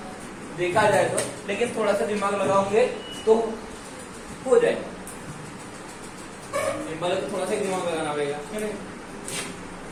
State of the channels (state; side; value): identical; both; correlation 1.00